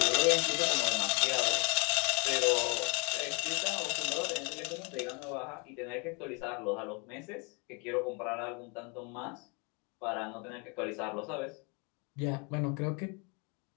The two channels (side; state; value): right; quieter; 33.3 dB